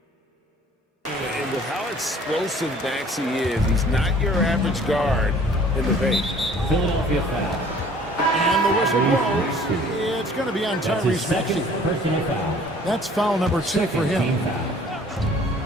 And with how explosive Maxey is, he's not your average guard in the paint. Philadelphia foul. And the whistle blows. It's going to be on Tyrese Maxey. Personal foul. That's foul number 2 for him.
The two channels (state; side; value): normal; both; correlation 0.53